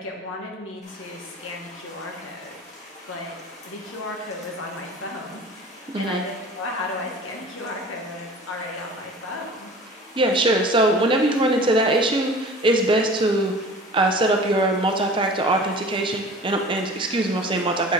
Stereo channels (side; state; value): both; normal; correlation 0.42